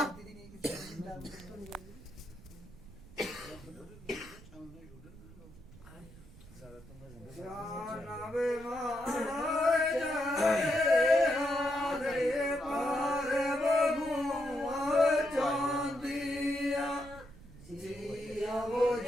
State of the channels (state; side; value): noise; right; rumble, 19 dB below the sound